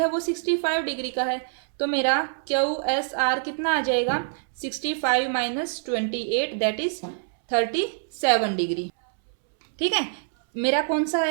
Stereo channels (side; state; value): left; silent; 62 dB below the other